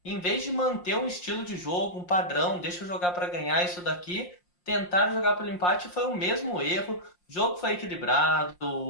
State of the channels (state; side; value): late; right; 5.6 ms